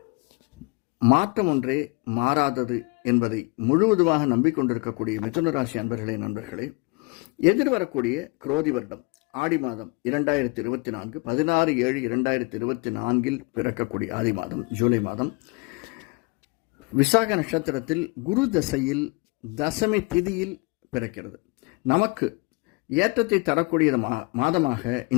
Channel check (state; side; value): quieter; right; 28.8 dB